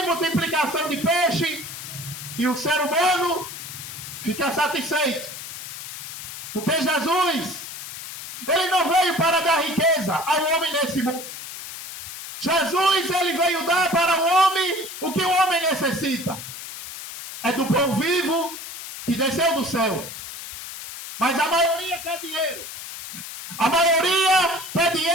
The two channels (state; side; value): noise; left; hiss, 10 dB below the sound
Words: multiplicação de peixe, e o ser humano fica satisfeito. Porque Jesus, ele não veio para dar riqueza ao homem nesse mundo. Jesus, ele veio dar para o homem o que o homem necessita. É do pão vivo que desceu do céu. Mas a maioria quer dinheiro. A maioria quer